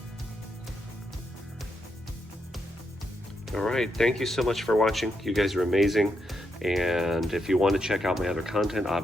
All right, thank you so much for watching. You guys are amazing. And if you want to check out my other content,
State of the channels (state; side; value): normal; both; correlation 0.82